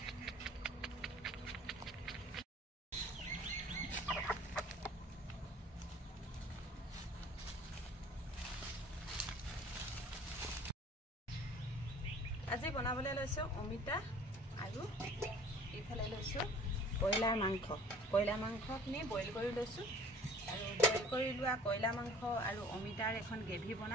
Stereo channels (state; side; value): normal; both; correlation 0.50